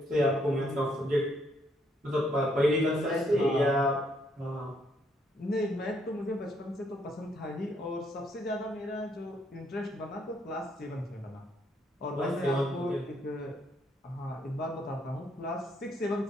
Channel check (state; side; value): normal; both; correlation 0.71